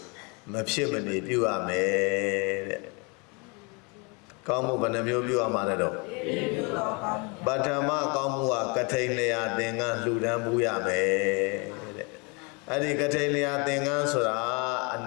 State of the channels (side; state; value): right; quieter; 31.2 dB